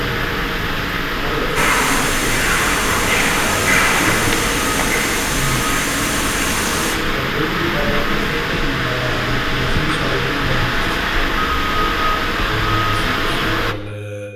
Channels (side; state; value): both; identical; correlation 1.00